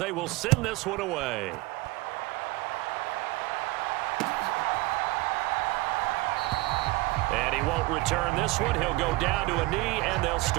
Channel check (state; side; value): quieter; left; 20.8 dB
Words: will send this one away. And he won't return this one. He'll go down to a knee, and they'll